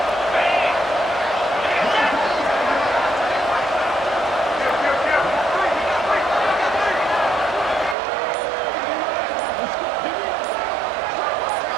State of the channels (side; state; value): left; drops out; at 8.0 s